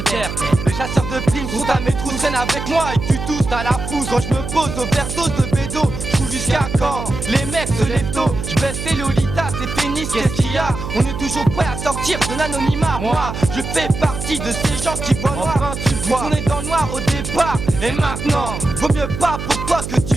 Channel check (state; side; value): noise; right; hum, 7 dB below the sound